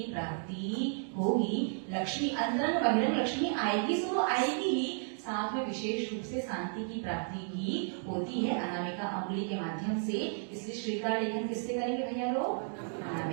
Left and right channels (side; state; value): left; silent; 56 dB below the other